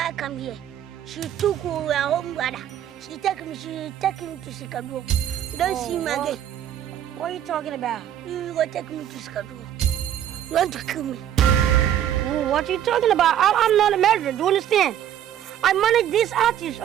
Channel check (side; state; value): left; quieter; 10.7 dB